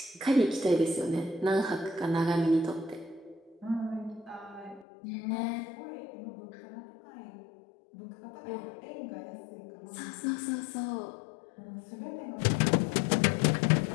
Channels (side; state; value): right; drops out; at 4.9 s